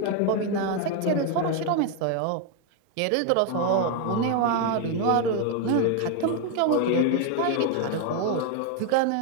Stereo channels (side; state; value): both; different; correlation 0.01